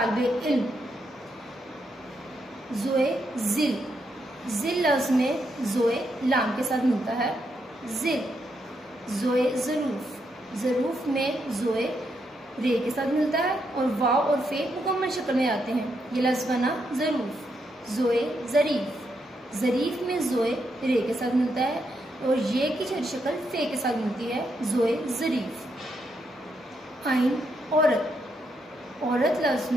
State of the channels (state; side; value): normal; both; correlation 0.80